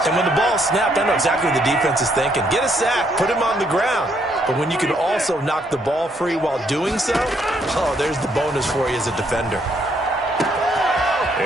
And when the ball snapped, I know exactly what the defense is thinking. Get a sack, put him on the ground. But when you can also knock the ball free while doing so, oh, there's the bonus for you as a defender.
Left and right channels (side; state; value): both; normal; correlation 0.71